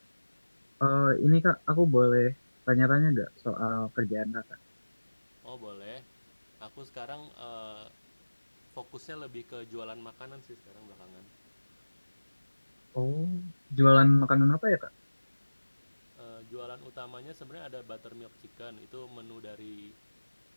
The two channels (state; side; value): inverted; both; correlation -1.00